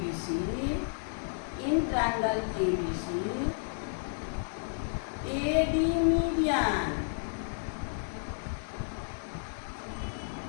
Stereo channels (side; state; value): right; silent; digital silence